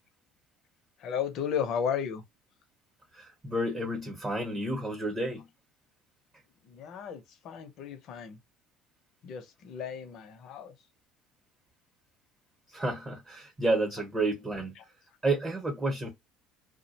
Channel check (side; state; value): both; normal; correlation 0.59